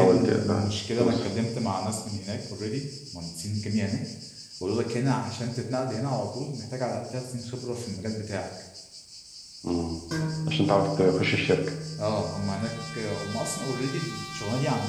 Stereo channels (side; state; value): both; identical; correlation 1.00